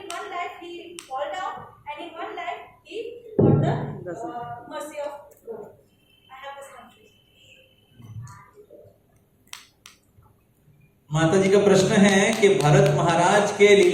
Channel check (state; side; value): identical; both; correlation 1.00